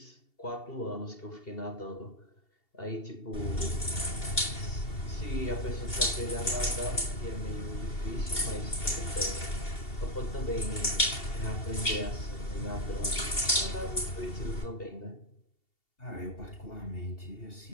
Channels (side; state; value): right; late; 2.7 ms